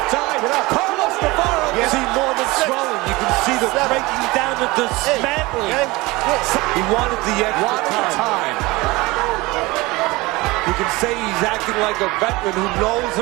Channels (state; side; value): quieter; left; 22.0 dB